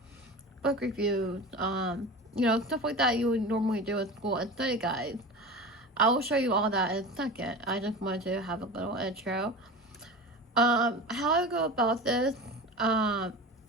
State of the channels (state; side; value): normal; both; correlation 0.31